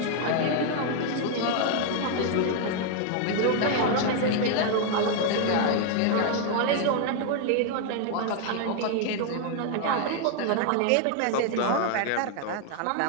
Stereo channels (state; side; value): different; both; correlation 0.00